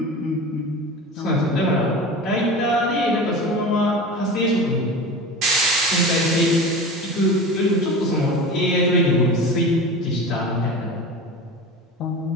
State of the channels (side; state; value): both; normal; correlation 0.32